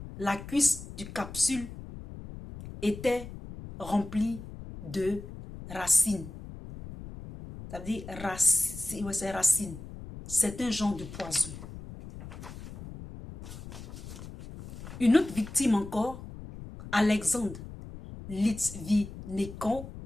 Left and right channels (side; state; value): left; noise; rumble, 12 dB below the sound